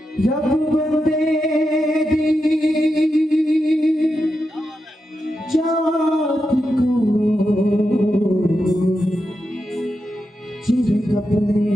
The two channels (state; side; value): normal; both; correlation 0.88